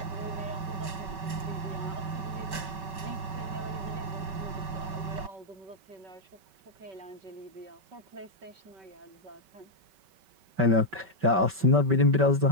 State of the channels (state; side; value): late; left; 5.2 ms